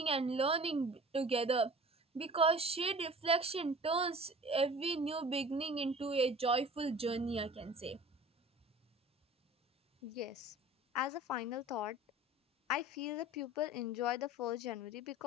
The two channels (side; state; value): both; normal; correlation 0.43